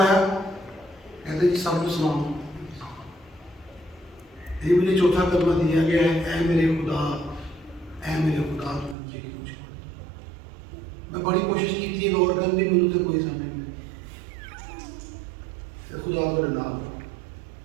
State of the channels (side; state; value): left; drops out; at 9.0 s